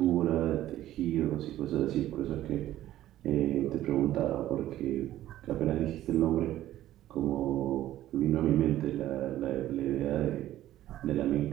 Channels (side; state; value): left; quieter; 13.7 dB